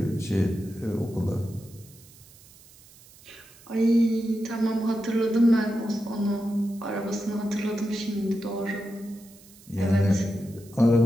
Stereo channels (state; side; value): noise; right; hiss, 24 dB below the sound